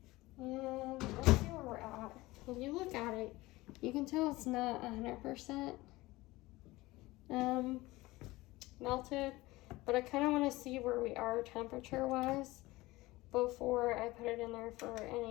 And let's see where we're at. If you look at it, you can tell it's not 100% melted, but I kind of want to see where we are temperature-wise before I put it in there for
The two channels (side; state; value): right; quieter; 19.8 dB